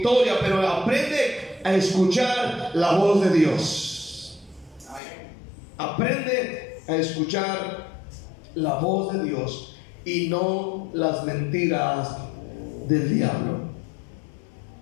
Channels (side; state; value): right; drops out; at 5.0 s